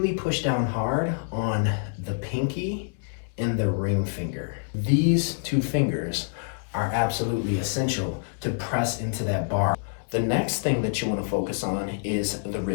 push down hard on the pinky and the ring finger. These two fingers are absolutely essential to press into that bar. The next thing that you want to focus on is the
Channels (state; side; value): silent; right; digital silence